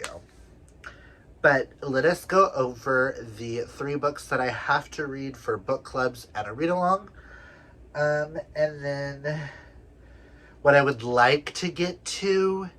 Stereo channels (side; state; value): both; identical; correlation 1.00